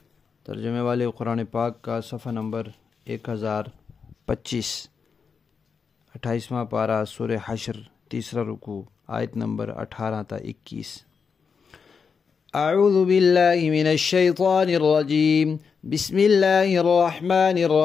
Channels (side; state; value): right; quieter; 5.8 dB